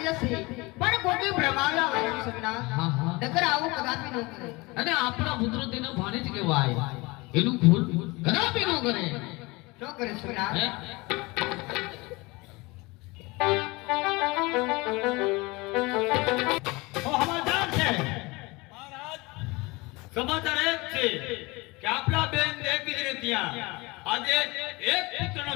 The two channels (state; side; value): quieter; right; 24.1 dB